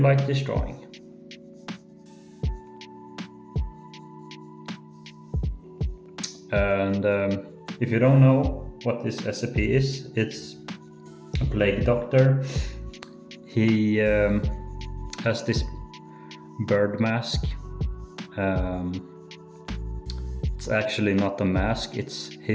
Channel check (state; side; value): identical; both; correlation 1.00